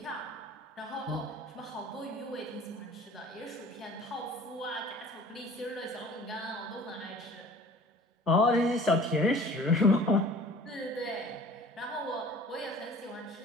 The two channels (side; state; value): both; normal; correlation 0.47